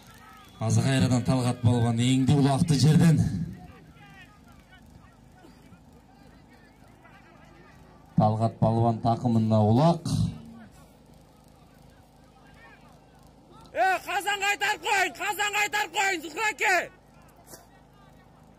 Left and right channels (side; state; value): both; identical; correlation 1.00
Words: Azı kayradan Talgat balvan eğindi ulaktı жерден. Talgat balvan takımında ulak. Kazan kaytar koyun, Zuhra gel.